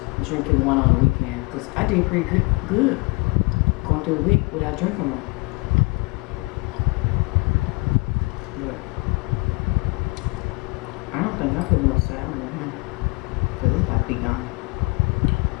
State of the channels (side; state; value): right; quieter; 26.6 dB